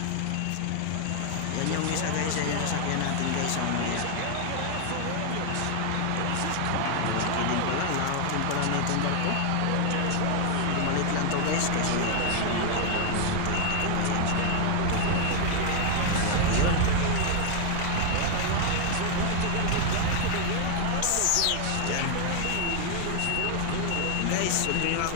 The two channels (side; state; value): both; different; correlation 0.00